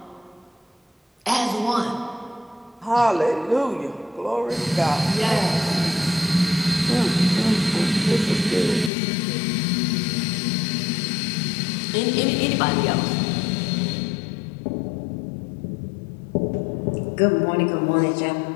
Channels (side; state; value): right; drops out; at 8.9 s